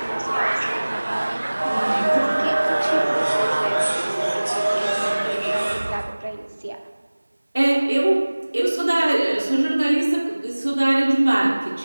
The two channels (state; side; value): inverted; both; correlation -1.00